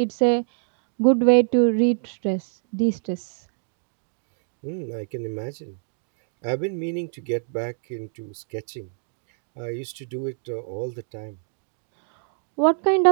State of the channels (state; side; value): silent; left; digital silence